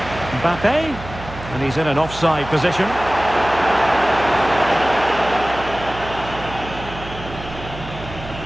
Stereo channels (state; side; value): noise; right; hum, 13 dB below the sound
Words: Mbappe. And he's in an offside position.